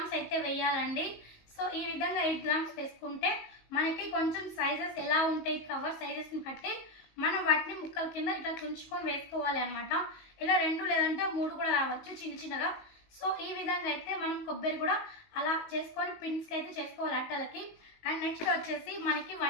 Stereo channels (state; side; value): late; right; 19 ms